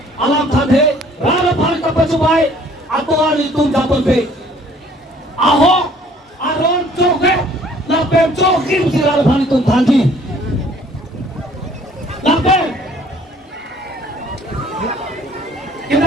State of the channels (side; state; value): both; normal; correlation 0.57